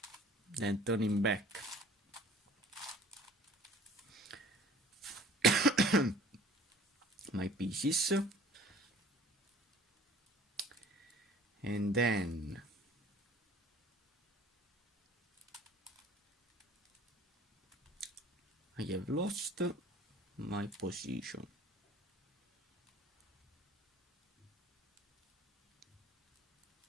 then turning back my pieces, and then I have lost my position.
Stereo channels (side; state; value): both; normal; correlation 0.50